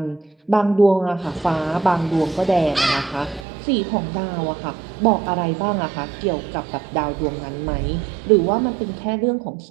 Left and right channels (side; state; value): left; drops out; at 3.5 s